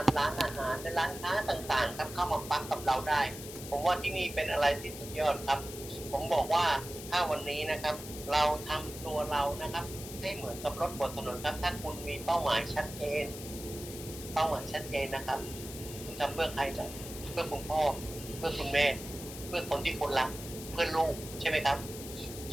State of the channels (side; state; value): left; noise; hiss, 12 dB below the sound